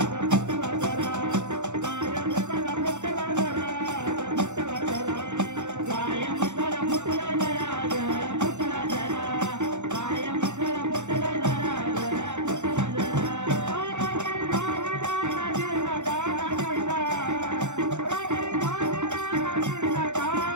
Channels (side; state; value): left; late; 0.84 ms